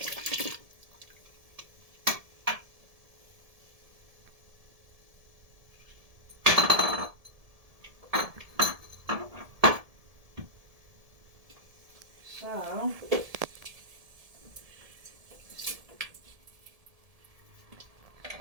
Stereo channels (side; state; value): left; late; 1.7 ms